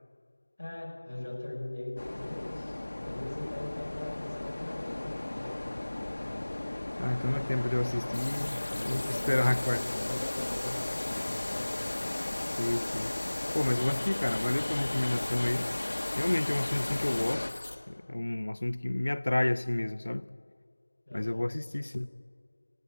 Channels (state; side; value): inverted; both; correlation -1.00